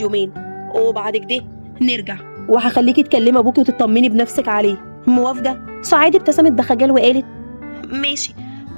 وبعد كده نرجع، وهخليكي تكلمي ابوكي وتطمني بنفسك عليه. موافقه؟ سعاد ابتسمت بخجل وقالت ماشي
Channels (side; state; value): both; inverted; correlation -1.00